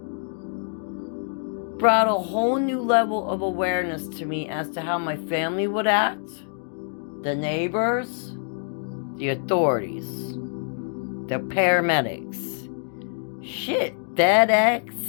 Brought a whole new level of awareness to me as to how my family would act, the neighbors, the authorities, the paramedics, shit,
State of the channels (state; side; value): silent; right; digital silence